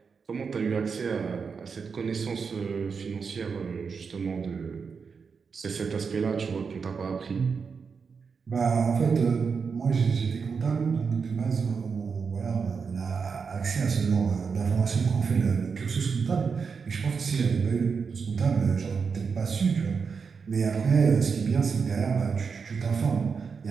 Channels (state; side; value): quieter; left; 5.6 dB